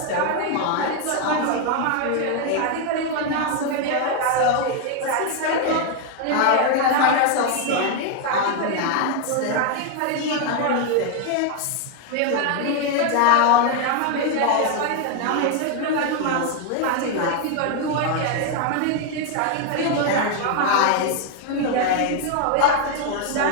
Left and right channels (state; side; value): different; both; correlation 0.01